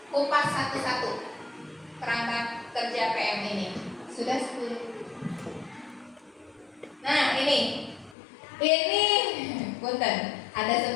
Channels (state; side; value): drops out; right; at 8.2 s